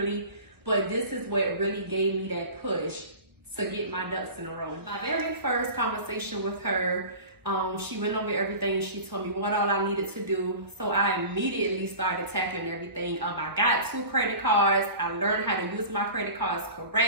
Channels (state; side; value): late; left; 1.1 ms